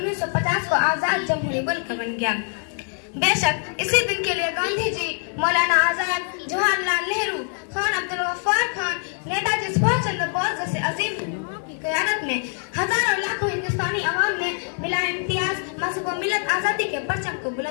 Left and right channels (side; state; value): right; silent; 56 dB below the other